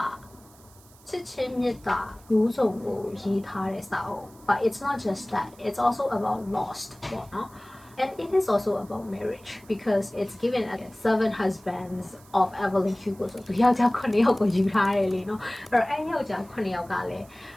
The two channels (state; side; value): noise; right; hiss, 26 dB below the sound